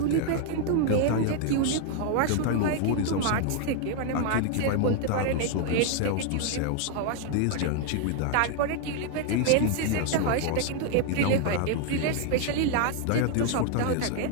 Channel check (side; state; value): both; different; correlation 0.00